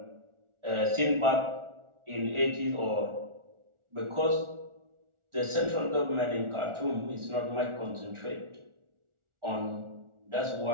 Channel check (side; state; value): left; late; 1.4 ms